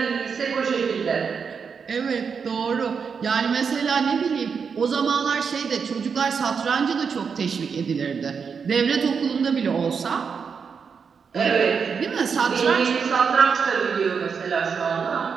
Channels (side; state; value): left; quieter; 6.1 dB